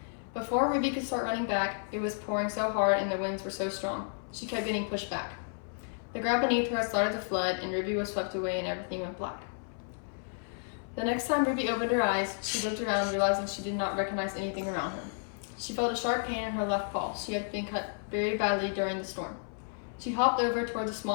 Before Ruby could start running back, it was pouring so hard and the winds were so strong, she kept getting pushed back. The ground beneath her had started to flood and Ruby was swept away and everything went black. The next time Ruby opened her eyes, she looked around, realizing she did not recognize anything around her. She felt a sharp pain in her left paw. She had been cut very badly during the storm. She hopped over towards a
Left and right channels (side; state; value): right; silent; 57 dB below the other